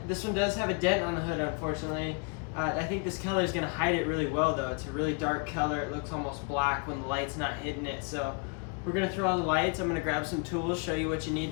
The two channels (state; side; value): quieter; right; 35.7 dB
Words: This one does have a dent on the hood, unfortunately. I think this color is going to hide it really well though. It's a really dark color. It looks almost black when the light's not hitting it. So we're going to throw all the lights. I'm going to grab some tools, show you what you need